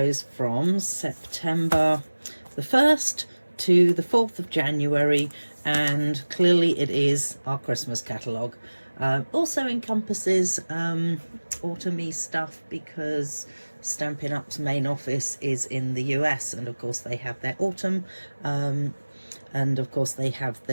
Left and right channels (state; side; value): inverted; both; correlation -1.00